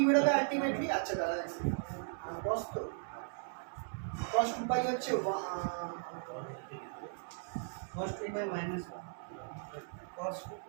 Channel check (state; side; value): silent; left; digital silence